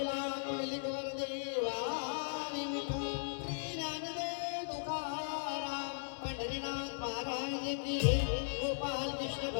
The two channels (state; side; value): silent; right; digital silence